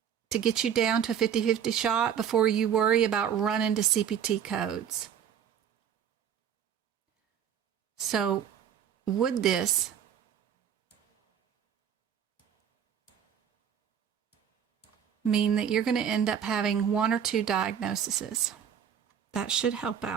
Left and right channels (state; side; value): quieter; left; 8.6 dB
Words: to get you down to a 50-50 shot before you worry about running to CPT codes. So would this mean that you're going to end up having 1 or 2 diagnoses? That should help